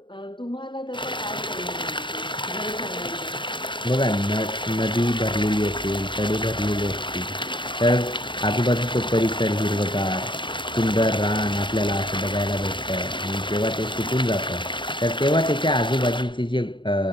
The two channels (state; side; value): late; right; 0.23 ms